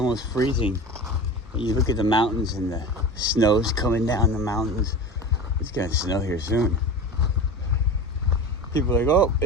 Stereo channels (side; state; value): both; normal; correlation 0.31